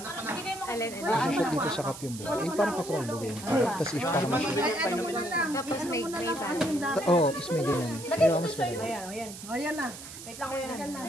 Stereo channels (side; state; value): right; noise; hiss, 13 dB below the sound